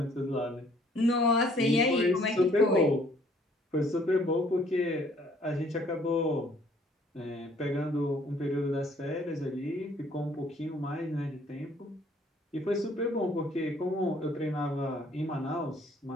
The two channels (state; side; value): normal; both; correlation 0.60